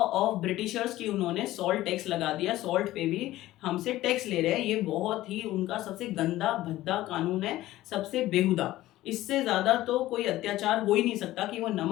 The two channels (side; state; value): right; quieter; 15.8 dB